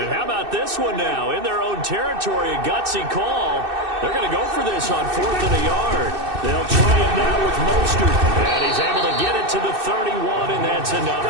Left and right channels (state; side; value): late; left; 2.6 ms